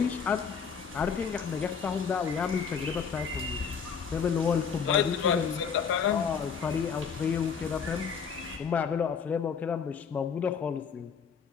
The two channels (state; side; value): quieter; right; 6.5 dB